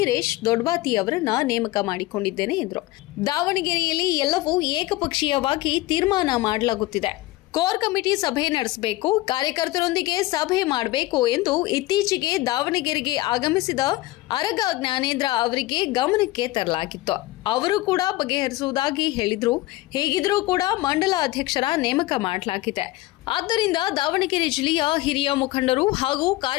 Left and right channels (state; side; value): quieter; right; 18.2 dB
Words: ದೊಡ್ಡಬಾತಿ ಅವರನ್ನ ನೇಮಕ ಮಾಡಿಕೊಂಡಿದ್ದೇನೆ ಎಂದರು. ದಾವಣಗೆರೆಯಲ್ಲಿ ಎಲ್ಲವೂ ಏಕಪಕ್ಷೀಯವಾಗಿ ತೀರ್ಮಾನ ಮಾಡಲಾಗುತ್ತಿದೆ. ಕೋರ್ ಕಮಿಟಿ ಸಭೆ ನಡೆಸಬೇಕು, ಕಾರ್ಯಕರ್ತರೊಂದಿಗೆ ಸಭೆ ಮಾಡಬೇಕು ಎಂದು ಇತ್ತೀಚೆಗೆ ದಾವಣಗೆರೆಗೆ ಆಗಮಿಸಿದ ಅರಗ ಜ್ಞಾನೇಂದ್ರ ಅವರಿಗೆ ಗಮನಕ್ಕೆ ತರಲಾಗಿತ್ತು. ಅವರು ಕೂಡ ಬಗೆಹರಿಸುವುದಾಗಿ ಹೇಳಿದ್ರು. ಹೀಗಿದ್ರೂ ಕೂಡ ಮಂಡಲ ಅಧ್ಯಕ್ಷರ ನೇಮಕ ಮಾಡಲಾಗಿದೆ. ಆದ್ದರಿಂದ ದಾವಣಗೆರೆ ಜಿಲ್ಲೆಯ ಹಿರಿಯ ಮುಖಂಡರು ಹಾಗೂ